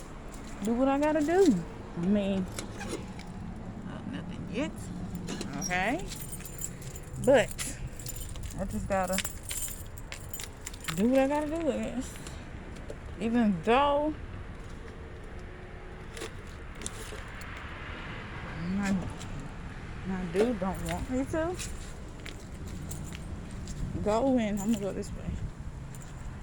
do what I gotta do. I mean, nothing yet. Okay. But I just gotta do what I gotta do, I guess. Even though my dude don't want me to go in. I'm gonna go this way.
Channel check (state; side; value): identical; both; correlation 1.00